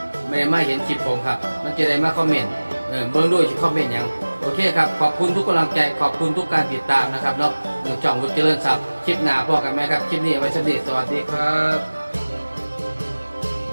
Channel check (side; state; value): both; inverted; correlation -1.00